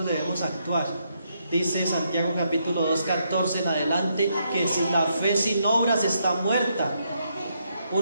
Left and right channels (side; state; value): both; inverted; correlation -0.78